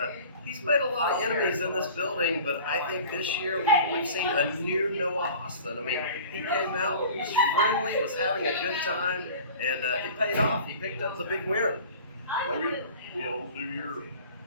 he's made a lot of enemies in this building. But I think this year we've seen a new Noah Hossman. I mean, he came out, was friendly, was having a good time, and it paid off. He picked up the big win. Maybe, you know, New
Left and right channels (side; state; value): both; inverted; correlation -0.42